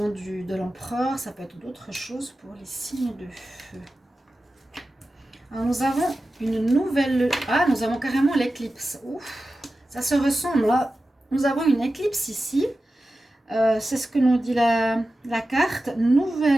de l'empereur, ça peut être d'autres choses pour les signes de feu. Alors, nous avons une nouvelle... Ah, nous avons carrément l'éclipse. Ouf, ça se ressemble, là. Nous avons une éclipse ici. C'est ce que nous dit la carte.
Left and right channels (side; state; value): both; normal; correlation 0.94